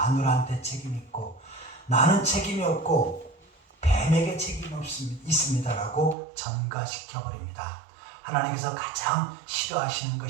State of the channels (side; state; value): left; drops out; at 6.2 s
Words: 책임이 있고 나는 책임이 없고 뱀에게 책임이 있습니다라고 전가시켜버립니다. 하나님께서 가장 싫어하시는